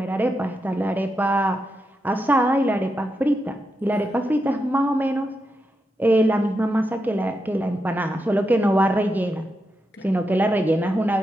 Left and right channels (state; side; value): normal; both; correlation 0.86